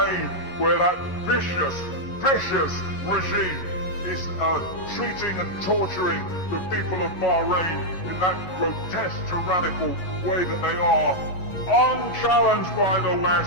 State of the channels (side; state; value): right; late; 11 ms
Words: where that vicious regime is treating and torturing the people of Bahrain in that grotesque, tyrannical way that they are, unchallenged by the